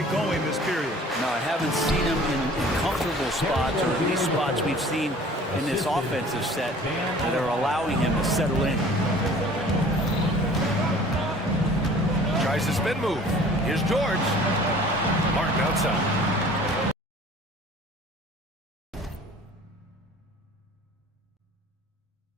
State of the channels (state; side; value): normal; both; correlation 0.49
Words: going this period. No, I haven't seen him in comfortable spots, or at least spots we've seen in this offensive set that are allowing him to settle in. Tries the spin move. Here's George. Martin outside.